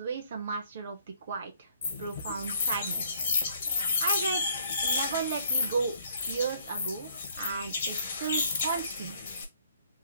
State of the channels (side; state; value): both; inverted; correlation -0.63